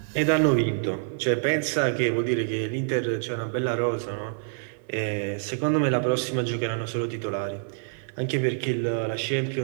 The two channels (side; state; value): left; silent; 61 dB below the other